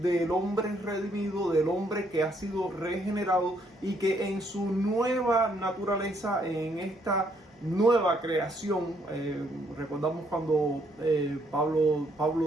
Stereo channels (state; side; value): normal; both; correlation 0.70